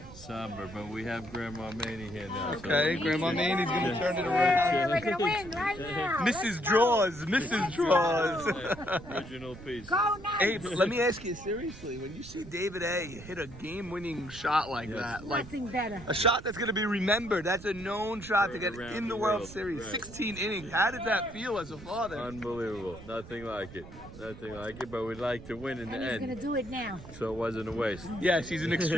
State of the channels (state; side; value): noise; right; rumble, 15 dB below the sound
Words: Somber, but we have Grandma Maney here now. Okay, Grandma Maney's going to turn it around. We're going to win right now. Mrs. Draws, Mrs. Draws. Original piece. Go now. Abe, let me ask you seriously, when you see David A. hit a game-winning shot like that, like Nothing better. a shot that's going to be remembered, that's a known shot to get Around in the the World world, Series, right. 16 innings. How did that feel as a father? Unbelievable. Nothing like it. Nothing like it, but we'd like to win in the And he's going to end. do it now. So it wasn't a waste. Yes, he's an